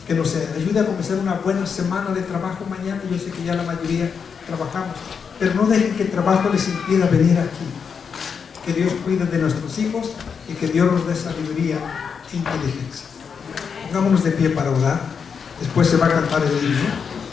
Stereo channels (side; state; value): right; quieter; 6.3 dB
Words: que nos ayude a comenzar una buena semana de trabajo mañana. Yo sé que ya la mayoría trabajamos, pero no dejen que el trabajo les impida venir aquí. Que Dios cuide de nuestros hijos y que Dios nos dé sabiduría e inteligencia. Pongámonos de pie para orar. Después se va a cantar el himno.